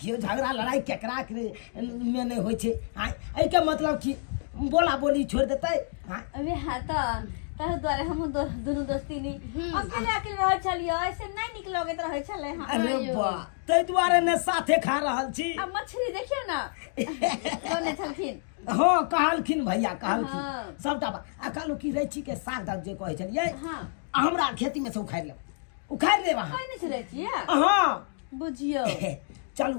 झगड़ा लड़ाई केकरा के में नहीं होइ छै एहि के मतलब कि बोला बोली छोड़ देतै हाँ अबे हाँ तो ताहि दुआरे हम दोनों दोस्ती नहीं अकेले रह छलियो ऐसे नहीं निक लगैत रहे छले हाँ अरे वाह ताहि दुआरे ने साथे खा रहल छी अब मछली देखियो ना कोने छलखिन हाँ कहलखिन भैया कहलखिन हाँ। सबटा आ कहलू कि रैची के साग दाग जे कहै छलियै हाँ हमरा खेती में से उखाड़ि लेब अहाँ कोई नहीं छले छिए हाँ बुझियो चलू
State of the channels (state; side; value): silent; right; digital silence